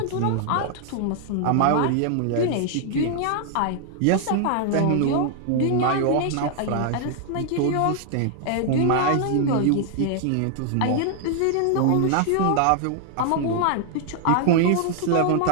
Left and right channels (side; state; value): both; different; correlation 0.00